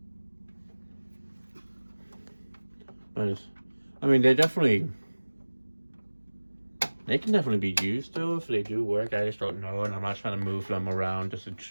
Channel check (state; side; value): inverted; both; correlation -1.00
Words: But I mean, they can definitely be used though if they do work. I just don't know, and I'm not trying to move them around just to